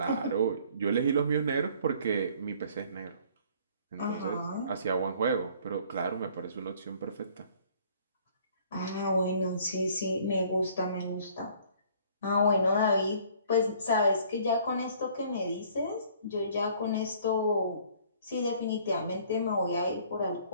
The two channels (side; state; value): both; inverted; correlation -0.56